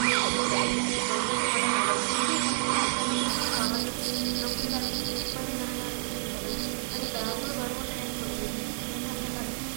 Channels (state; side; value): silent; left; digital silence